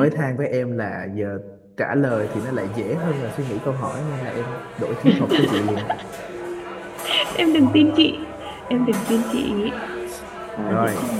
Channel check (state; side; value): identical; both; correlation 1.00